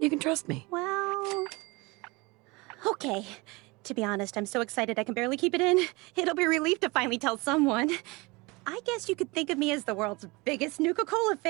can trust me. Well... Okay. To be honest, I'm so excited I can barely keep it in. It'll be a relief to finally tell someone. I guess you could think of me as the world's biggest Nuka-Cola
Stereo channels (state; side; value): quieter; left; 25.1 dB